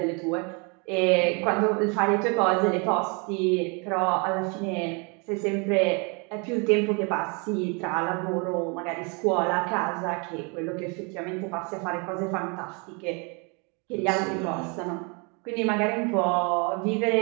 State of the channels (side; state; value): left; quieter; 32.5 dB